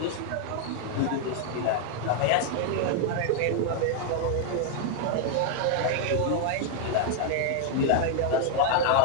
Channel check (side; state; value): both; different; correlation 0.00